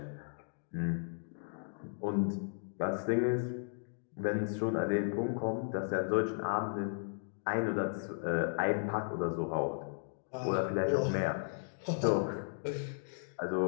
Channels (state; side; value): silent; right; digital silence